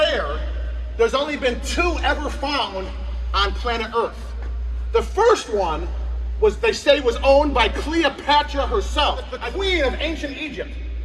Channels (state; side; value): identical; both; correlation 1.00